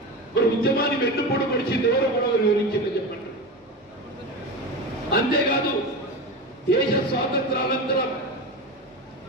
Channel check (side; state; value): both; normal; correlation 0.24